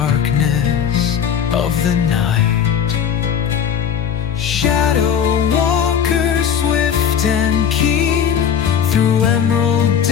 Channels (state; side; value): quieter; right; 8.1 dB